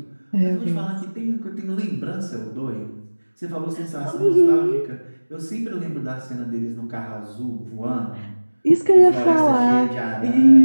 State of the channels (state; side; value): inverted; both; correlation -1.00